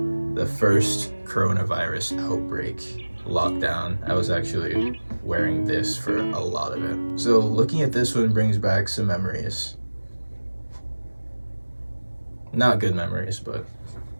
first coronavirus outbreak lockdown, I was actually wearing this for a lot of it. So looking at this one brings back some memories. Not good memories, but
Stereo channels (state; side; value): inverted; both; correlation -1.00